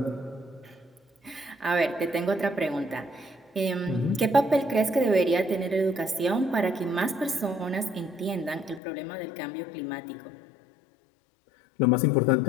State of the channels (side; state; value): right; drops out; at 8.8 s